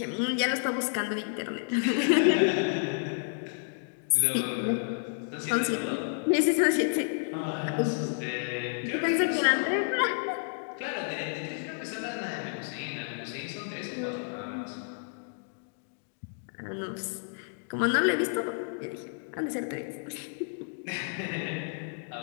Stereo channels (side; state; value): right; silent; digital silence